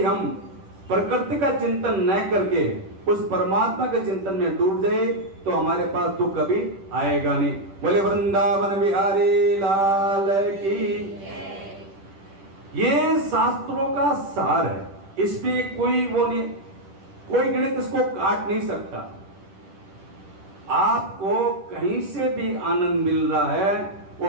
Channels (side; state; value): left; late; 10 ms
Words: हम प्रकृति का चिंतन न करके उस परमात्मा के चिंतन में डूब जाए तो हमारे पास दुख कभी आएगा नहीं। बोले वृंदावन बिहारी लाल की। ये शास्त्रों का सार है, इसमें कोई वो नहीं, कोई गणित इसको काट नहीं सकता। आपको कहीं से भी आनंद मिल रहा है